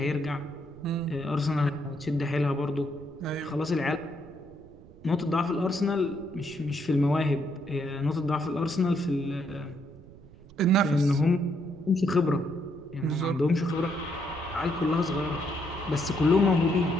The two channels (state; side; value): noise; right; rumble, 22 dB below the sound